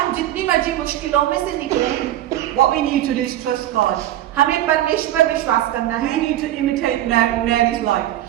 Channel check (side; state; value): left; quieter; 13.4 dB